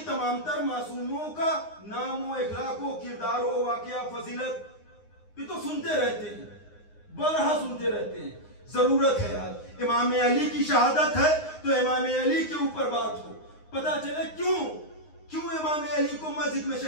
तर मासूमों का नामो इखलाको किरदारो वाकया फजीलत। ये तो सुनते रहते हैं, बरहा सुनते रहते हैं। जरूरत है आज इमाम अली की शहादत है तो इमाम अली के ऊपर बात हो, पता चले क्यों इमाम अली को मस्जिद में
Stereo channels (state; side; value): late; right; 9.6 ms